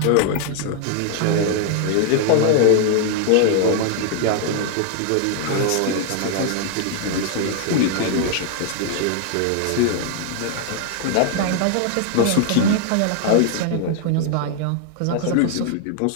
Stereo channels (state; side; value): different; both; correlation 0.00